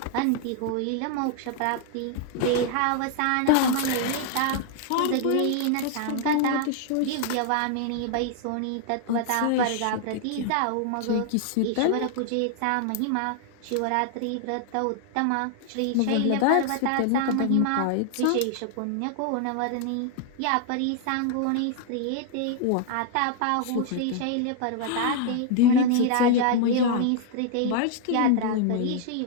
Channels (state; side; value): different; both; correlation 0.00